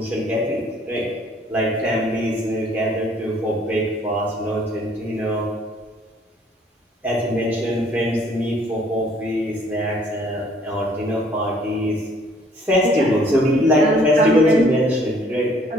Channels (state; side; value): normal; both; correlation 0.60